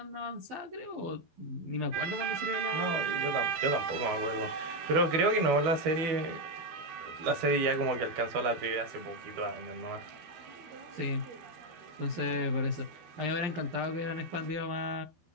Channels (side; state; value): left; late; 12 ms